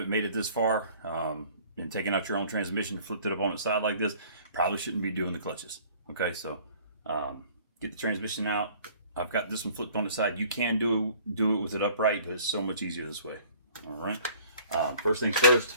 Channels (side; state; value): both; inverted; correlation -0.52